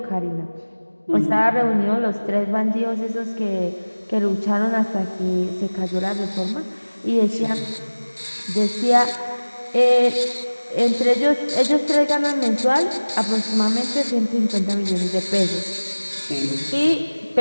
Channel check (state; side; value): inverted; both; correlation -1.00